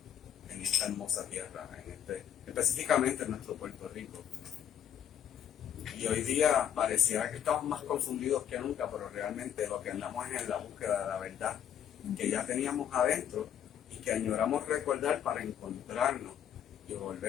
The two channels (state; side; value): quieter; right; 9.5 dB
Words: en esta hermosa tierra, específicamente en nuestro Puerto Rico. Y hoy día pareciera que estamos más confundidos que nunca, pero realmente lo que andamos es en la búsqueda de la verdad que ya teníamos adentro y que añoramos recordar para encontrarnos y